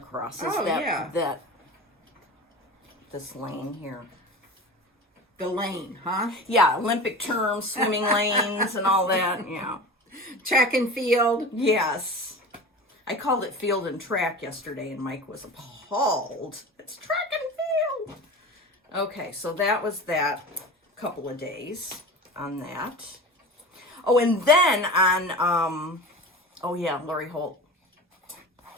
Oh, that this lane here. The lane, huh? Yeah, Olympic terms, swimming lanes, and all that. Yeah. Track and field. Yes. I called it field and track yesterday, and Mike was appalled. It's track and field. Okay, so that was that couple of days on that. Oh, and then on, Lori Holt.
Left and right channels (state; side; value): normal; both; correlation 0.32